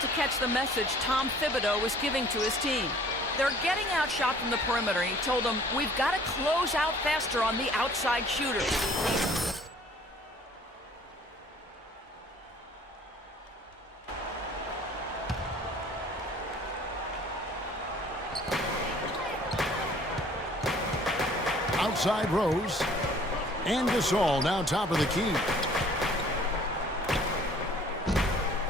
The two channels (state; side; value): normal; both; correlation 0.54